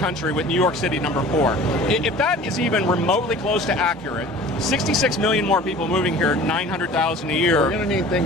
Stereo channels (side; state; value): both; normal; correlation 0.43